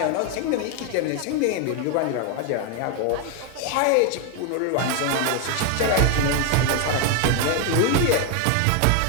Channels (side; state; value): both; different; correlation 0.01